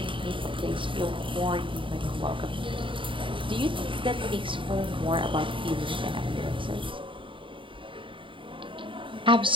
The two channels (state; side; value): late; left; 0.25 ms